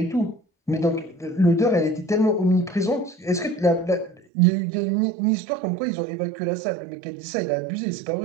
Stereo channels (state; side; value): drops out; left; at 4.2 s